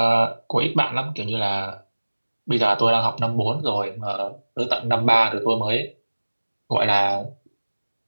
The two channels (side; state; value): both; inverted; correlation -1.00